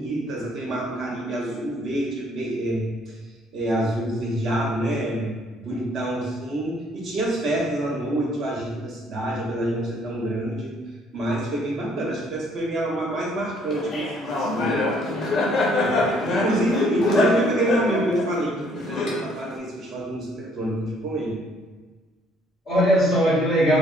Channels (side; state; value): both; normal; correlation 0.64